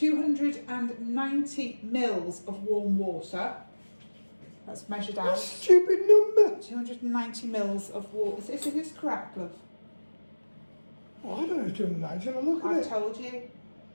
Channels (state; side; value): inverted; both; correlation -1.00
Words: mils of warm water. That's measured out. That's a stupid number. 290 mils of water. Is this correct, love? Oh, I don't know if 290. Shall I look at I've it? told you.